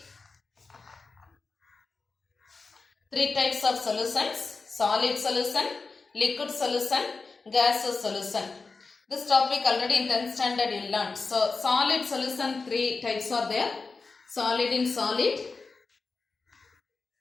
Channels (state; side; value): quieter; right; 4.2 dB